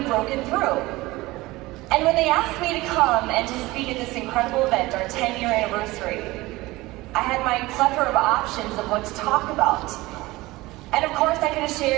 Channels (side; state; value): left; quieter; 20.0 dB